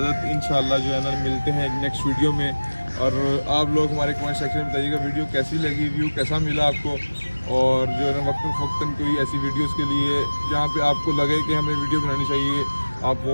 इंशाल्लाह जो है ना मिलते हैं नेक्स्ट वीडियो में। और आप लोग हमारे कमेंट सेक्शन में बताइएगा वीडियो कैसी लगी, व्यू कैसा मिला आपको। और जो है ना वक्तन कोई ऐसी वीडियोस के लिए जहाँ पे आपको लगे कि हमें वीडियो बनानी चाहिए, आप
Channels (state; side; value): inverted; both; correlation -1.00